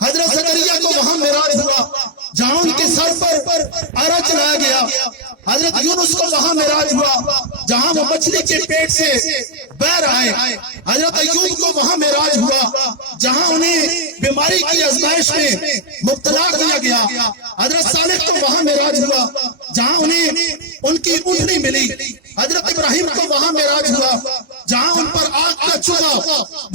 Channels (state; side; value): normal; both; correlation -0.03